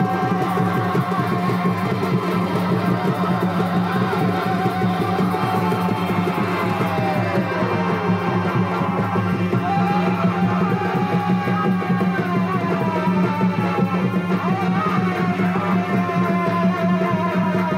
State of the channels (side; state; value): both; identical; correlation 1.00